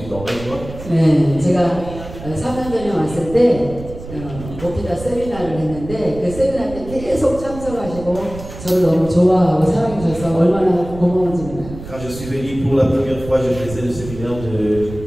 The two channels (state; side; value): noise; right; rumble, 13 dB below the sound